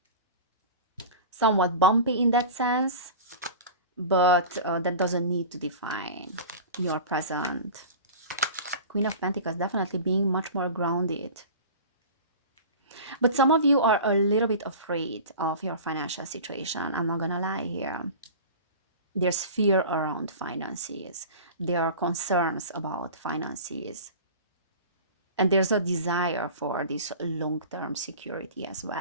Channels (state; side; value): inverted; both; correlation -0.36